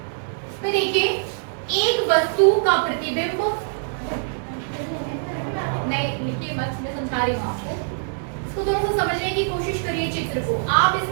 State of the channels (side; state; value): left; silent; digital silence